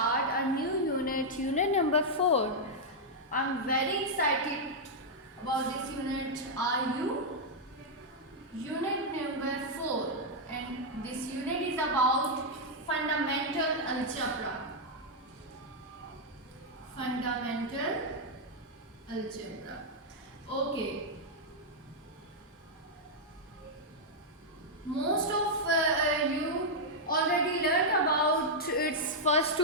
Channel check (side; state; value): both; normal; correlation -0.04